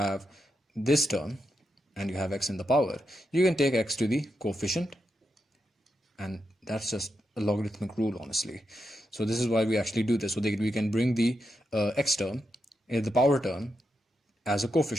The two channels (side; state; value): both; normal; correlation 0.85